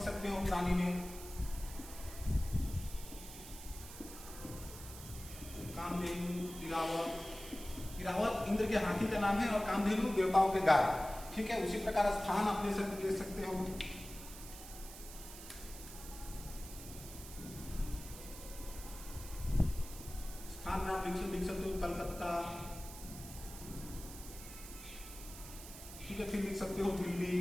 सकते हो प्राणी में। कामधेनु, इरावत। इरावत इंद्र के हाथी का नाम है और कामधेनु देवताओं के गाय। ठीक है, उसी प्रकार स्थान आप ले सकते हो। स्थान में आप लिख सकते हो कलकत्ता। ठीक है, फिर लिख सकते हो दिल्ली,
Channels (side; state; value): right; noise; hiss, 13 dB below the sound